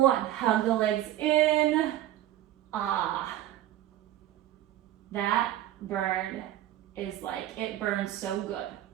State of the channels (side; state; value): left; quieter; 13.2 dB